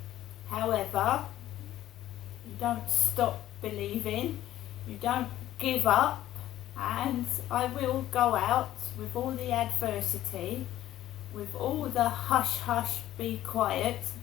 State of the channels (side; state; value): right; quieter; 13.4 dB